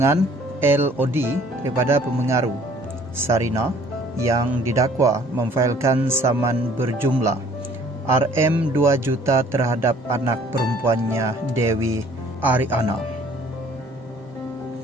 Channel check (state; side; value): normal; both; correlation 0.56